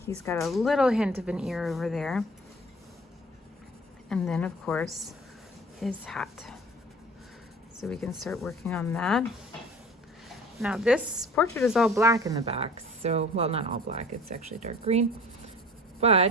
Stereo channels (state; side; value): normal; both; correlation 0.45